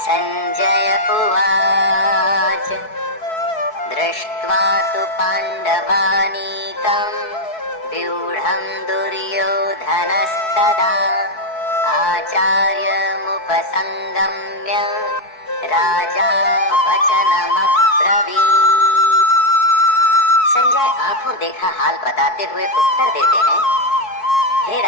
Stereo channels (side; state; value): right; late; 4.6 ms